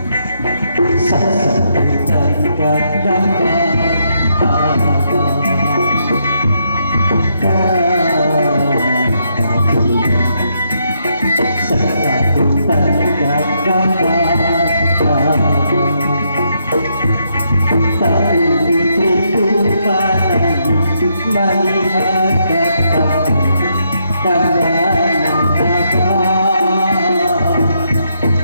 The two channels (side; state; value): both; inverted; correlation -0.77